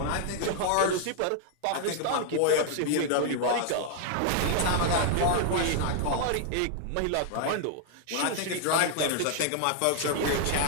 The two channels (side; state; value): both; different; correlation 0.00